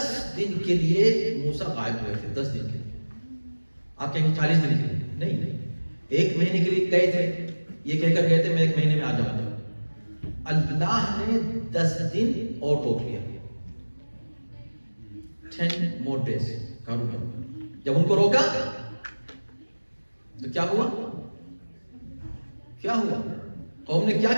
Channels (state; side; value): inverted; both; correlation -1.00